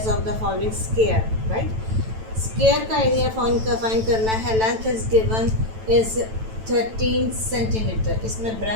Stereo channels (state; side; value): late; left; 9.1 ms